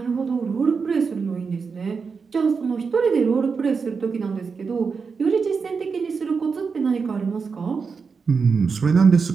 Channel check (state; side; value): quieter; left; 5.2 dB